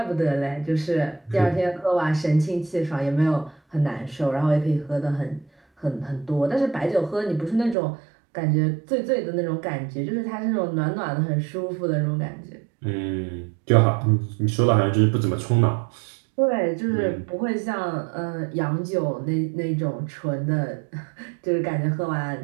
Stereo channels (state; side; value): drops out; left; at 7.8 s